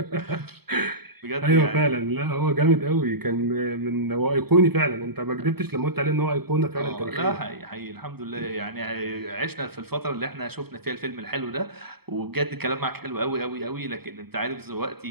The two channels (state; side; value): late; left; 0.96 ms